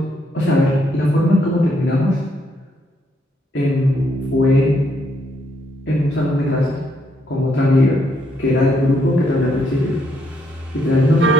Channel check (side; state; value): both; normal; correlation 0.73